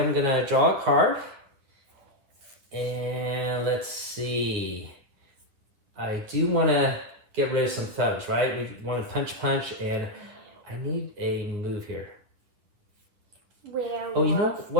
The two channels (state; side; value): late; left; 9.7 ms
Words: going to draw a card. And let's see. I do want to get rid of some thugs, right? We want to punch, and I need a move here. Werewolf. Oh, you know